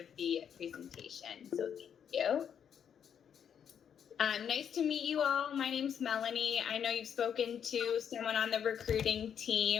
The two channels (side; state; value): right; quieter; 8.2 dB